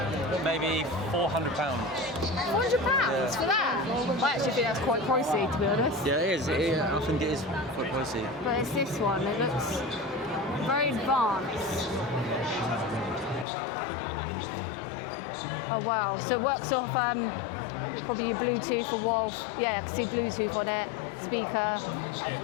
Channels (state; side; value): drops out; right; at 13.5 s